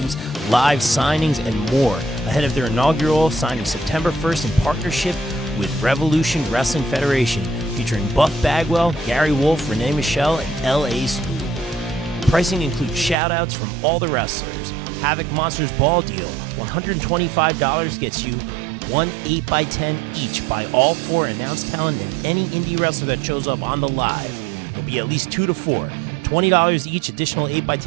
live signings, and more ahead of their inaugural signing September 1st in partnership with Revolution Wrestling Federation, featuring Buff Bagwell, Gary Wolf, Renee Michelle, and L.A. Spoon. Pricing includes shout-outs from all the wrestlers. Havoc Monsters Ball Deal, $125 gets you one 8x10 each by all four announced talent and any indie wrestler that shows up on the live. There'll be at least 2 to 4. $20 each, additional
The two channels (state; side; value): drops out; left; at 13.2 s